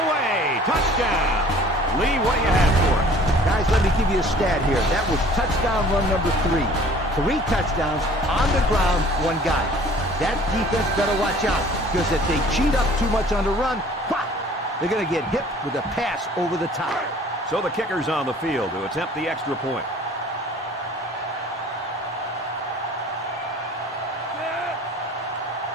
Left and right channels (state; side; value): normal; both; correlation 0.50